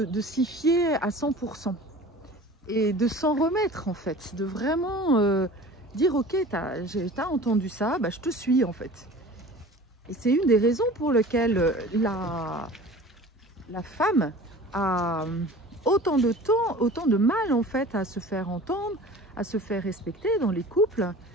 s'y fier à 100% et de s'en remettre en fait, de vraiment dire ok, t'as entendu ça, bah, je te suis en fait. Et c'est une des raisons pour lesquelles la femme a autant de temps, autant de mal en fait à se faire entendre, à se faire respecter dans les couples,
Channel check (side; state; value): both; normal; correlation 0.42